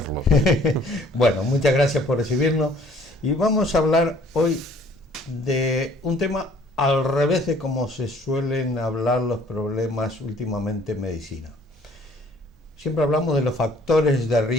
Bueno, muchas gracias por recibirnos y vamos a hablar hoy de un tema al revés de como se suelen hablar los problemas últimamente en medicina. Siempre hablamos de los factores de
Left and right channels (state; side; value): normal; both; correlation 0.57